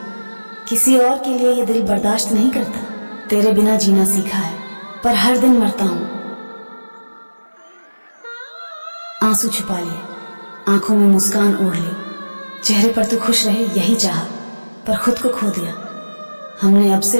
किसी और के लिए ये दिल बर्दाश्त नहीं करता। तेरे बिना जीना सीखा है पर हर दिन मरता हूं। आंसू छुपा लिए, आंखों में मुस्कान ओढ़ ली, चेहरे पर तू खुश रहे यही चाहा, पर खुद को खो दिया। हमने अब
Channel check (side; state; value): both; inverted; correlation -1.00